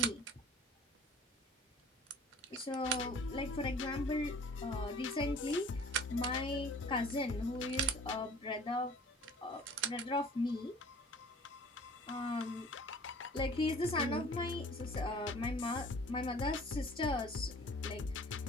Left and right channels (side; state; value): both; normal; correlation 0.48